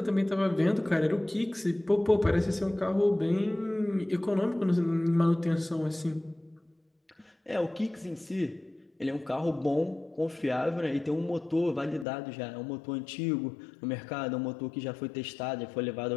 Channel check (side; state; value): right; drops out; at 12.1 s